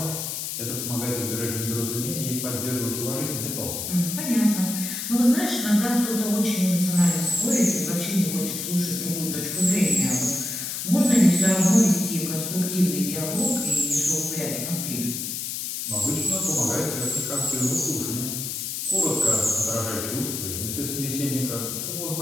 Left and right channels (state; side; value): noise; left; hiss, 4 dB below the sound